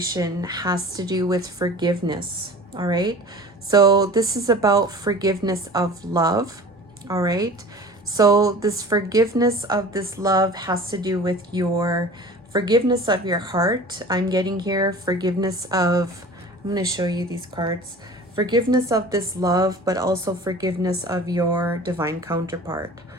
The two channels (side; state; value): both; normal; correlation 0.41